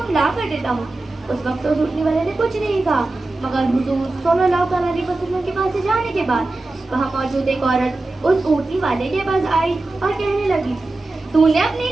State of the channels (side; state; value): left; quieter; 3.0 dB